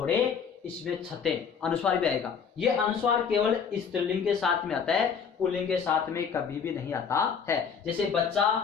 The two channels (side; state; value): right; quieter; 6.6 dB